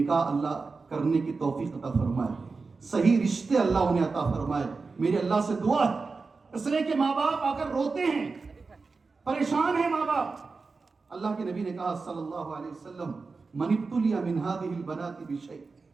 اللہ کرنے کی توفیق عطا فرمائے، صحیح رشتے اللہ انہیں عطا فرمائے، میری اللہ سے دعا ہے۔ اس لیے کہ ماں باپ آ کر روتے ہیں، پریشان ہیں ماں باپ، اللہ کے نبی نے کہا صلی اللہ علیہ وسلم من ابتلی من هذه البنات بشیء،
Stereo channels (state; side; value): quieter; left; 4.3 dB